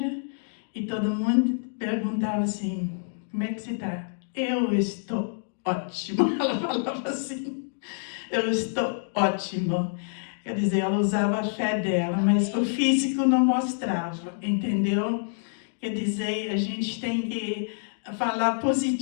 e todo mundo perguntava assim, como é que você está? Eu estou ótima, ela falava assim, eu estou ótimo. Quer dizer, ela usava a fé dela, mas o físico não mostrava, entendeu? Quer dizer, a gente tem que falar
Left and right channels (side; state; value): right; silent; digital silence